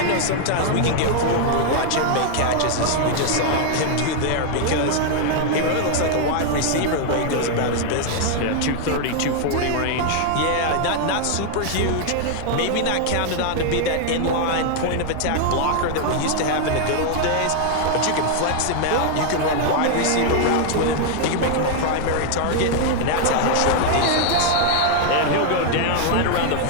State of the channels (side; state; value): both; different; correlation 0.00